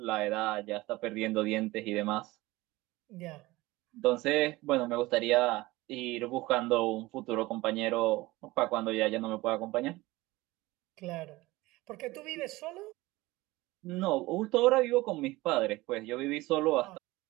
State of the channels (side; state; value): left; quieter; 19.9 dB